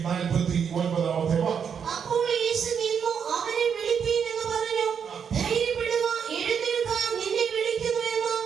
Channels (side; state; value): left; quieter; 7.2 dB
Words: 49-ാമത്തെ വാക്യം. അപ്പോൾ യേശു നിന്നു അവനെ വിളിപ്പീൻ എന്ന് പറഞ്ഞു. ധൈര്യപ്പെടുക, എഴുന്നേൽക്ക, നിന്നെ വിളിക്കുന്നു എന്ന്